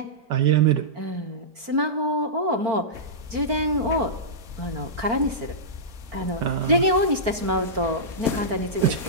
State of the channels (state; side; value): late; left; 4.5 ms